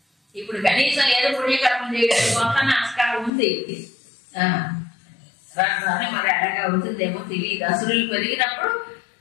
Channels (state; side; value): drops out; right; at 3.3 s